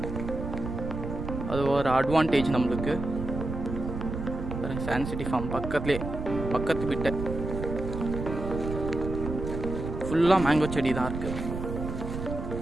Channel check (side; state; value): right; noise; rumble, 6 dB below the sound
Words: அது ஒரு அட்வான்டேஜ் நம்மளுக்கு. சாண்ட் சிட்டி ஃபார்ம் பக்கத்து விட்ட ஃபுல்லாக மேங்கோ செடி தான் இருக்குது.